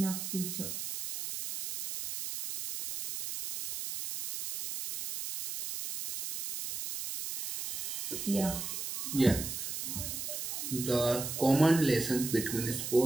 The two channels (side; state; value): right; noise; hiss, 5 dB below the sound